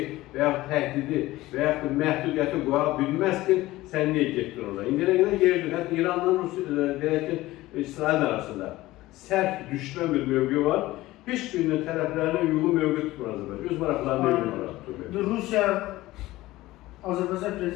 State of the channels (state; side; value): quieter; right; 17.6 dB